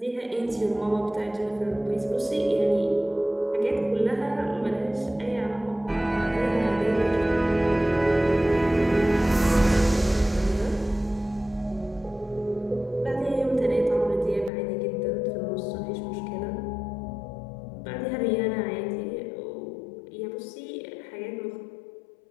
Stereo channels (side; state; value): right; drops out; at 14.5 s